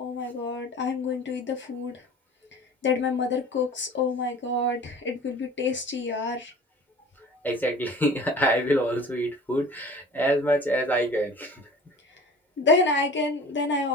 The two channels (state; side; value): normal; both; correlation 0.42